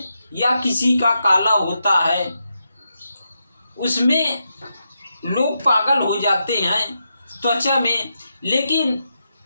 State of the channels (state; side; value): inverted; both; correlation -0.85